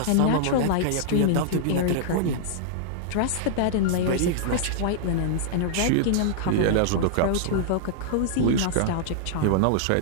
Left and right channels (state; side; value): different; both; correlation -0.01